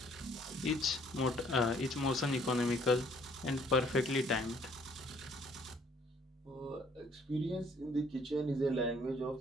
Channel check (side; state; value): both; normal; correlation 0.62